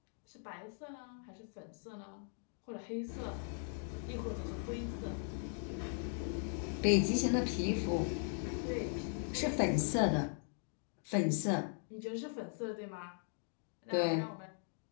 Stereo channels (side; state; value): right; silent; 52 dB below the other